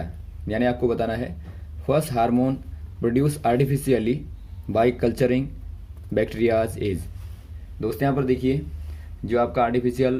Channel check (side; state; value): both; identical; correlation 1.00